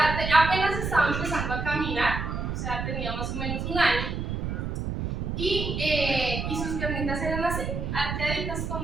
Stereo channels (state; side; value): noise; right; rumble, 3 dB below the sound